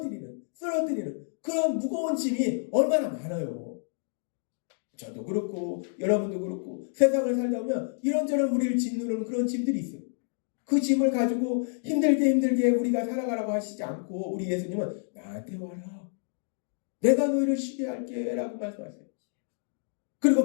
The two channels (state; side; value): silent; right; digital silence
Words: 쓰러뜨리는 그런 무거운 짐이 얼마나 많아요. 저도 그렇고 여러분도 그렇고 세상을 살다 보면 이런저런 우리를 짓누르는 그런 짐들이 있어요. 그 짐을 가지고 힘들게 우리가 살아가라고 하시지 않고 우리 예수님은 나한테 와라. 내가 너희를 쉬게 할게 라고 말씀하세요. 그리고